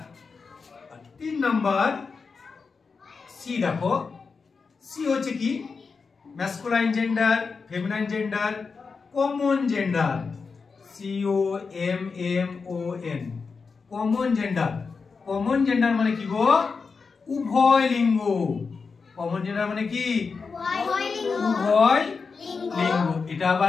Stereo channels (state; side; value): quieter; right; 4.9 dB